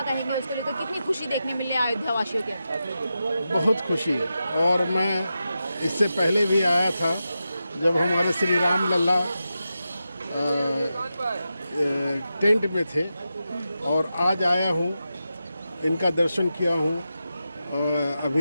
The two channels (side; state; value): both; inverted; correlation -0.90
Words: कहेंगे उसको लेकर? कितनी खुशी देखने मिली है अयोध्या वासियों के अंदर? बहुत खुशी है। और मैं इससे पहले भी आया था जब हमारे श्री राम लल्ला टेंट में थे, और आज आया हूँ, इनका दर्शन किया हूँ।